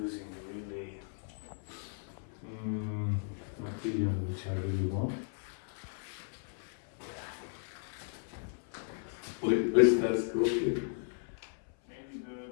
really material which I really want. Wait, that's cool. Maybe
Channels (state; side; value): silent; right; 54 dB below the other